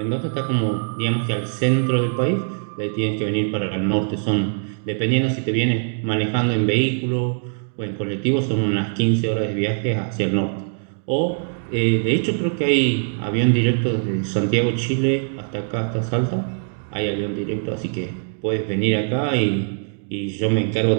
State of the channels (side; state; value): left; silent; digital silence